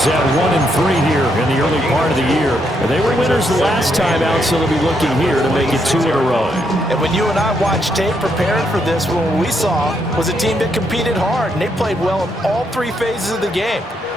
at 1-3 here in the early part of the year. And they were winners the last time out, so they'll be looking here to make it 2 in a row. And when you and I watched tape preparing for this, what we saw was a team that competed hard, and they played well in all 3 phases of the game.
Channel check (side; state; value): both; normal; correlation 0.77